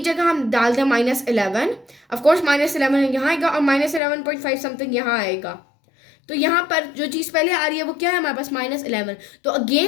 जगह हम डाल दें -11, ऑफकोर्स -11 यहाँ आएगा और -11.5 समथिंग यहाँ आएगा, तो यहाँ पर जो चीज़ पहले आ रही है वो क्या है हमारे पास, -11। तो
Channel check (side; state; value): right; drops out; at 4.0 s